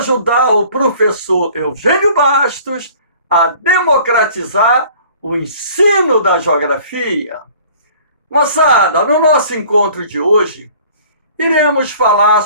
o professor Eugênio Bastos a democratizar o ensino da geografia. Moçada, no nosso encontro de hoje, iremos falar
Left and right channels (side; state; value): both; inverted; correlation -0.50